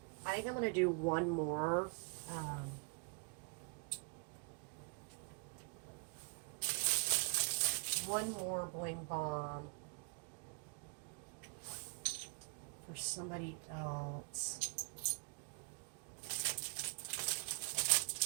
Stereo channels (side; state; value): left; quieter; 37.8 dB